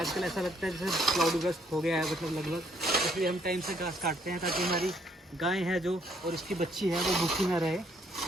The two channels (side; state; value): both; normal; correlation 0.67